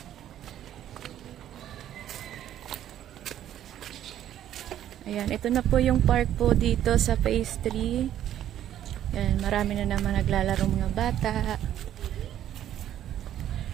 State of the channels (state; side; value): quieter; left; 11.4 dB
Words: Ayan, ito na po yung park po dito sa phase 3. Ayan, marami na naman naglalaro mga bata.